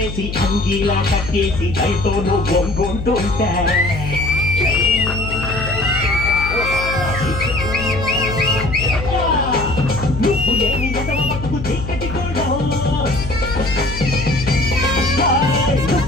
అంగీలా కట్టేసి దయతో నువ్వు గొంగుంటుంటే నువ్వు లేని ఎదవ బతుకు చీకటి కూడా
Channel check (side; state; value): left; noise; hum, 7 dB below the sound